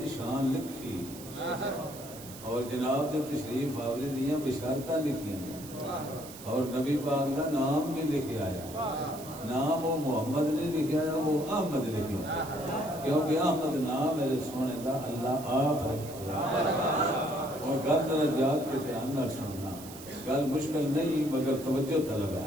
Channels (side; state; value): right; noise; hiss, 15 dB below the sound